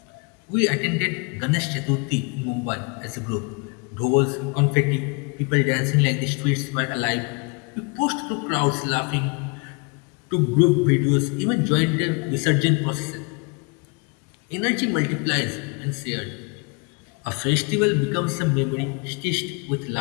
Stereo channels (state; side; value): quieter; right; 32.9 dB